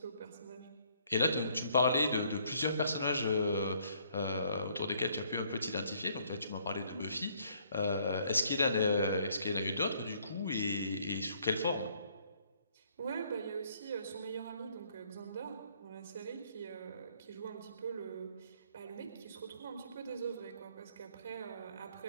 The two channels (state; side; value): inverted; both; correlation -0.65